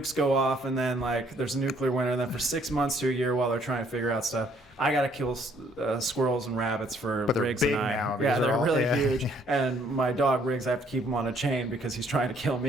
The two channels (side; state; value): both; normal; correlation 0.64